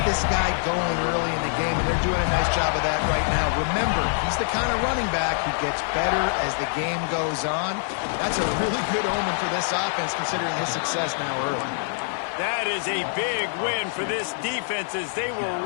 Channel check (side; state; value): right; silent; 56 dB below the other